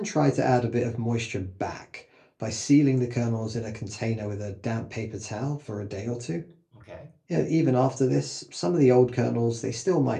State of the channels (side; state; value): both; identical; correlation 1.00